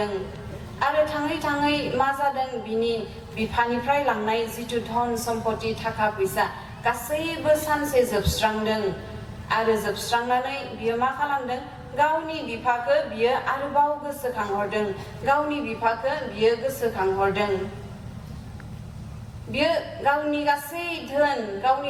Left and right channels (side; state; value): both; identical; correlation 1.00